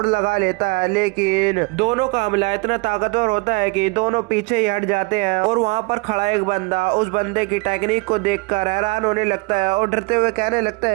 लगा लेता है, लेकिन दोनों का हमला इतना ताकतवर होता है कि दोनों पीछे ही हट जाते हैं। और वहाँ पर खड़ा एक बंदा उस बंदे की टेक्निक को देखकर हैरान होने लगता है और डरते हुए कहने लगता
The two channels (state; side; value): quieter; left; 27.5 dB